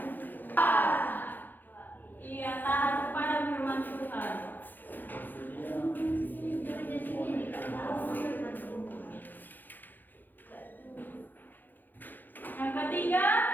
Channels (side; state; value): right; late; 0.088 ms